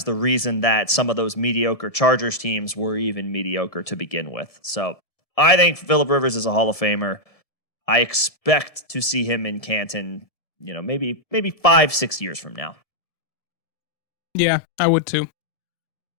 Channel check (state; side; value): late; right; 1.7 ms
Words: the reason that some of those mediocre Chargers teams were even mediocre to begin with. So I think Phillip Rivers is a Hall of Famer. I expect to see him in Canton, maybe 5-6 years from now. Yeah, I would too.